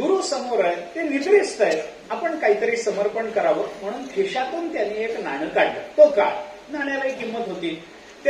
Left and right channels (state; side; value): identical; both; correlation 1.00